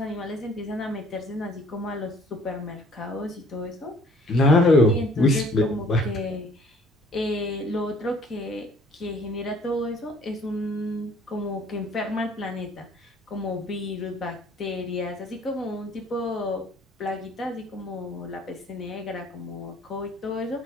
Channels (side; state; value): both; normal; correlation 0.56